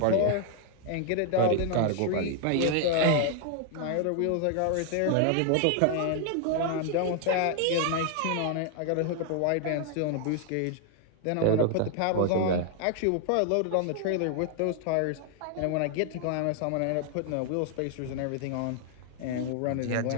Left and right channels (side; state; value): both; different; correlation 0.00